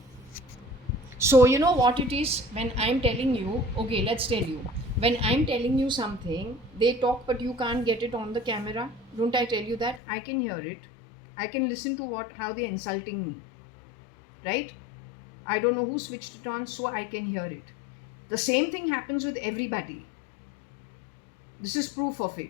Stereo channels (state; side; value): drops out; right; at 10.0 s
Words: So you know what it is when I'm telling you, okay, let's tell you. When I'm telling you something, they talk but you can't get it on the camera. Don't I tell you that? I can hear it. I can listen to how they're insulting me. Right? I don't know who switched it on, so I can hear it. The same thing happens with everybody. This is proof of